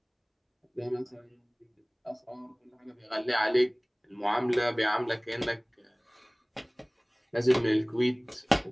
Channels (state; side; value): identical; both; correlation 1.00